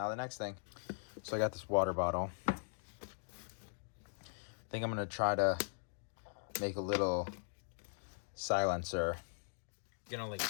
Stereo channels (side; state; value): right; silent; digital silence